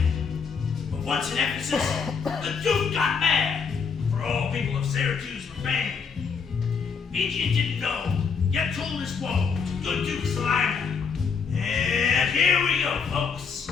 But once in Ephesus, the duke got mad, for all people of Syracuse were banned. Indian didn't know, yet told his woe to good Duke Slater. And here we go, folks.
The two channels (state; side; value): quieter; right; 5.8 dB